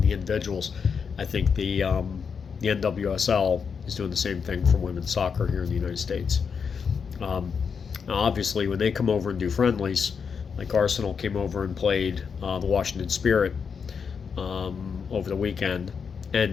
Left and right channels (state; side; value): quieter; right; 6.2 dB